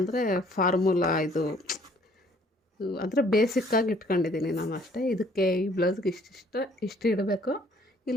ಫಾರ್ಮುಲಾ ಇದು ಅಂದರೆ ಬೇಸಿಕ್ಕಾಗಿ ಇಟ್ಕೊಂಡಿದ್ದೀನಿ ನಾನು ಅಷ್ಟೇ. ಇದಕ್ಕೆ ಈ ಬ್ಲೌಸ್ಗೆ ಇಷ್ಟು ಇಡಬೇಕು,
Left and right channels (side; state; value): both; normal; correlation 0.60